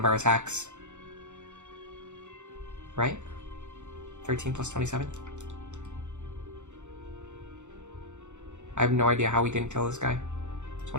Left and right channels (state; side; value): late; left; 0.84 ms